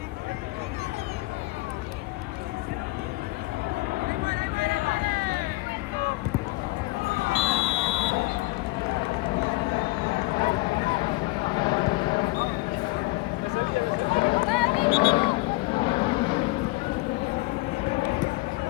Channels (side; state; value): right; quieter; 22.6 dB